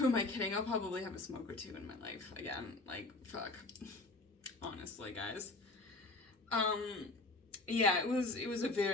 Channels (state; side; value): quieter; right; 3.1 dB